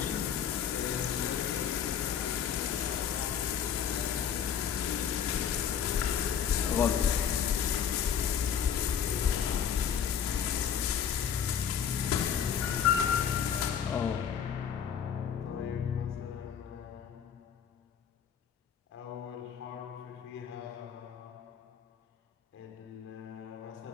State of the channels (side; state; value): right; quieter; 8.2 dB